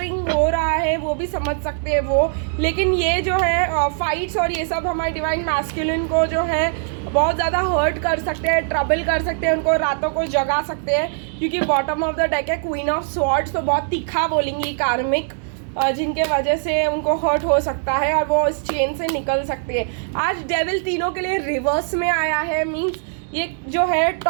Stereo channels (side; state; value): left; silent; digital silence